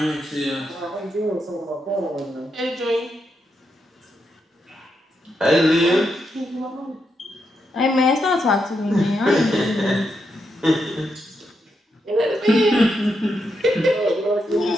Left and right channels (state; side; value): normal; both; correlation 0.83